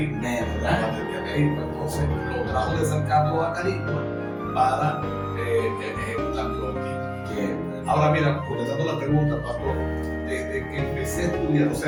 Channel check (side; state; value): both; identical; correlation 1.00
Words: Entonces lo trajo de San Carlos a Acarigua para ejecutarlo aquí. Ahora mira, contestando la pregunta, pastor, desde que empecé a estudiar, o